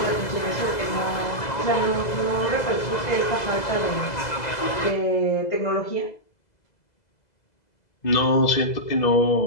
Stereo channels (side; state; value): right; late; 2.0 ms